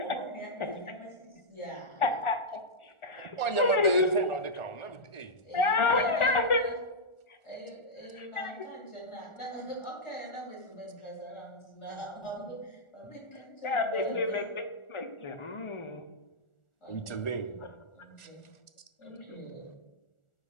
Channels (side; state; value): right; late; 1.4 ms